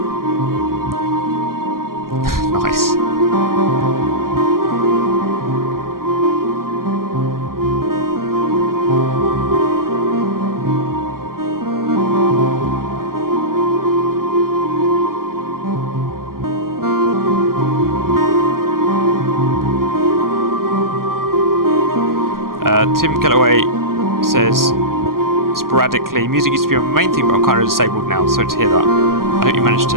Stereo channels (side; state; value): left; late; 0.92 ms